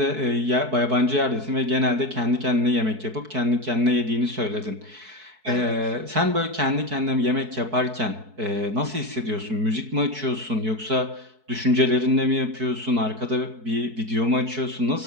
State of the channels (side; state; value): left; late; 4.6 ms